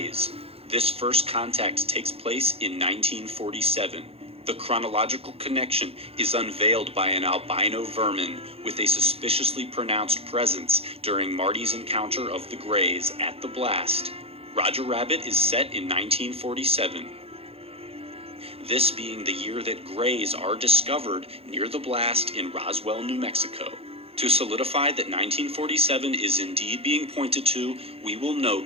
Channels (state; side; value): late; left; 0.28 ms